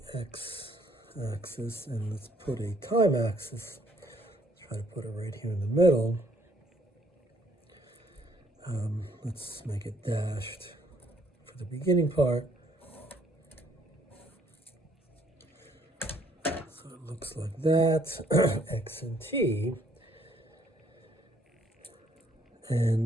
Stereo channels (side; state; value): both; normal; correlation 0.65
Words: x-axis, and let's put a time axis. Try to put it right here in the middle. Let's make it dashed for the beginning part. So it looks like that, x and t.